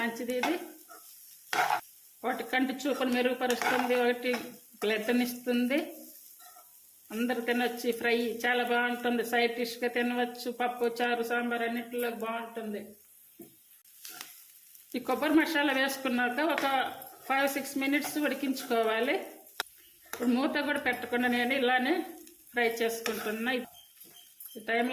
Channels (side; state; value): both; identical; correlation 1.00